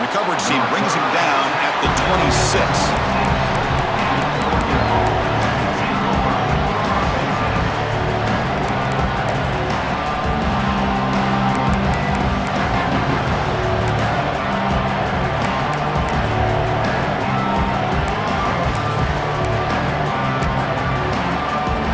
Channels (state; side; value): identical; both; correlation 1.00